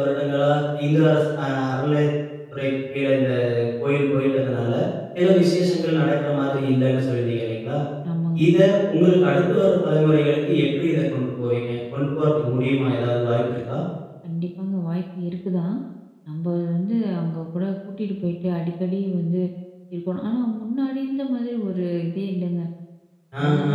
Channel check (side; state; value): both; identical; correlation 1.00